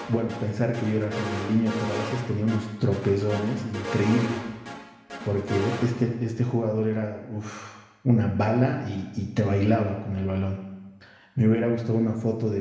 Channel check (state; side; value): identical; both; correlation 1.00